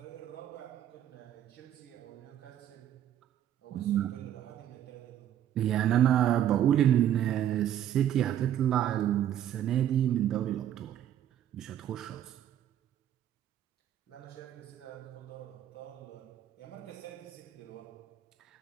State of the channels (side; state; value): left; quieter; 11.0 dB